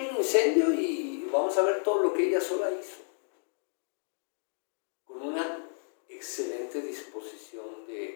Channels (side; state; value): right; silent; digital silence